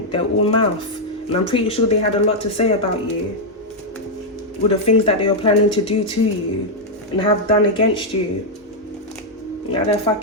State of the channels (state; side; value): normal; both; correlation -0.02